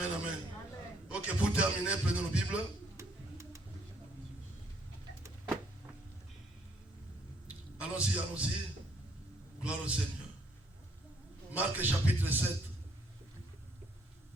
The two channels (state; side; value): normal; both; correlation 0.67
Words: amen. Ok, pour terminer, prenons nos Bibles. Allons-y, allons-y. Gloire au Seigneur. Marc chapitre 7.